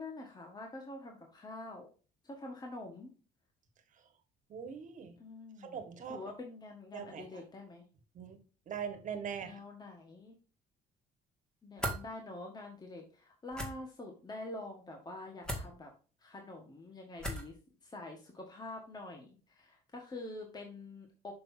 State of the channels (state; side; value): normal; both; correlation 0.40